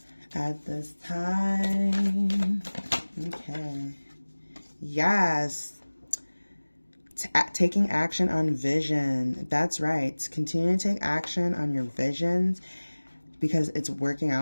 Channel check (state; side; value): inverted; both; correlation -1.00